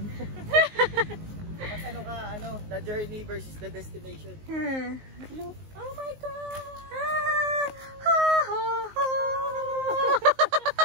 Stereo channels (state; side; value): late; left; 19 ms